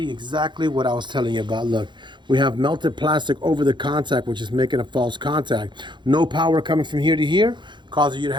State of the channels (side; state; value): left; late; 0.22 ms